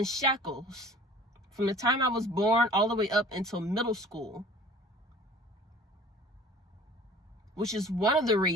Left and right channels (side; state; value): both; normal; correlation 0.46